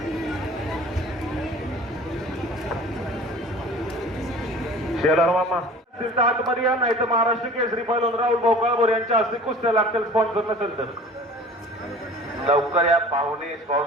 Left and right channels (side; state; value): both; normal; correlation 0.44